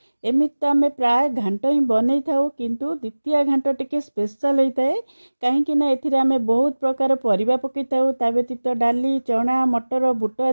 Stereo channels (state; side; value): inverted; both; correlation -1.00